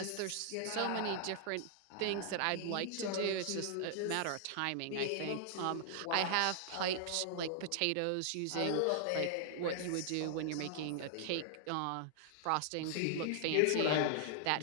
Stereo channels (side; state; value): both; different; correlation 0.00